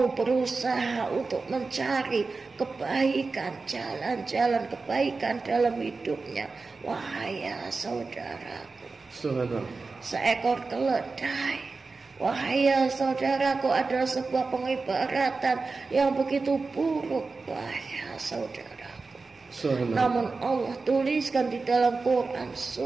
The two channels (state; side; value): quieter; left; 4.1 dB